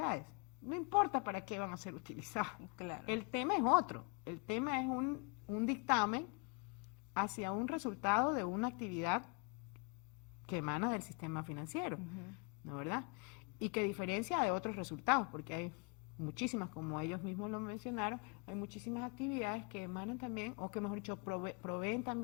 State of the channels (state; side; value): quieter; right; 31.1 dB